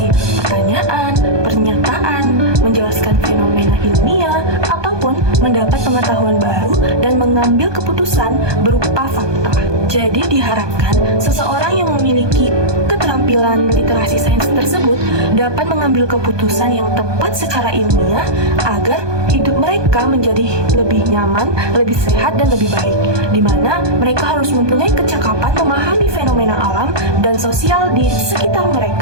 pertanyaan, pernyataan, menjelaskan fenomena ilmiah, ataupun mendapat pengetahuan baru dan mengambil keputusan berupa fakta. Jadi diharapkan seseorang yang memiliki keterampilan literasi sains tersebut dapat mengambil keputusan yang tepat secara ilmiah agar hidup mereka menjadi lebih nyaman, lebih sehat, dan lebih baik, di mana mereka harus mempunyai kecakapan memahami fenomena alam dan sosial di sekitar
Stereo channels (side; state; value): left; late; 1.2 ms